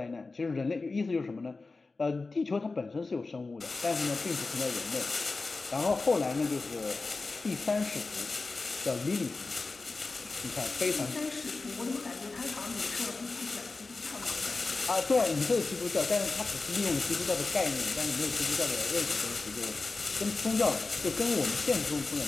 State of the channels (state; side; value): quieter; right; 3.7 dB